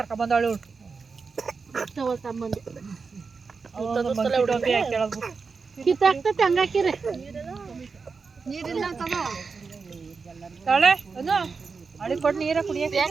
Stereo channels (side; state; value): left; quieter; 4.9 dB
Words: ಬಂದವಳು ಕಿತ್ತಾಕ್ತೈತೆ ಹಂಗಾಕಿರಿ ನೀರಿಲ್ಲ ಅಳಿ ಕೊಡು ನೀರ ಕುಡಿಯಕ್ಕೆ